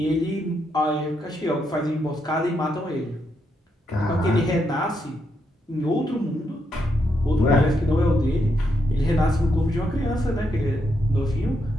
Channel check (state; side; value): normal; both; correlation 0.80